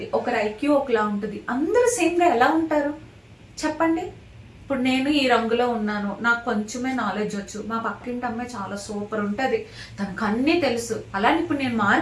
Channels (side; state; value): both; identical; correlation 1.00